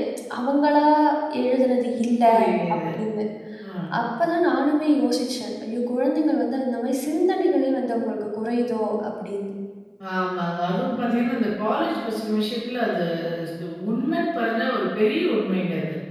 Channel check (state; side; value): identical; both; correlation 1.00